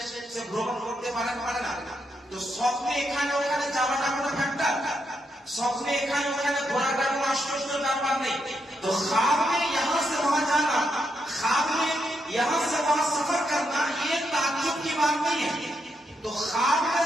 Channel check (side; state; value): both; normal; correlation 0.81